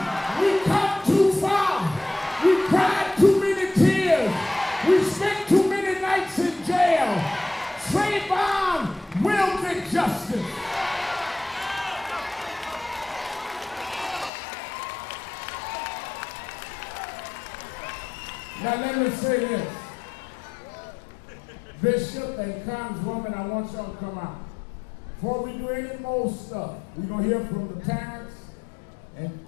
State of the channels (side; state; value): right; drops out; at 14.3 s